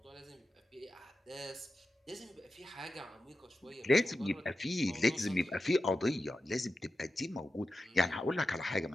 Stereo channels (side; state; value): both; normal; correlation 0.91